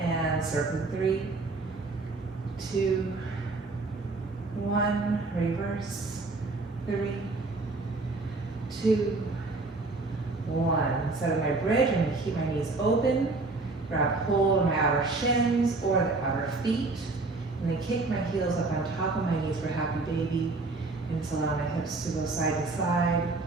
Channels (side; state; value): left; quieter; 3.5 dB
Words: circle 3, 2, 1, reverse, 3, 2, 1. Instead of my bridge, I'm going to keep my knees open, grab hold of my outer shins or the outer feet, and then kick my heels up on top of my knees for happy baby, and just allow my hips to go side to side.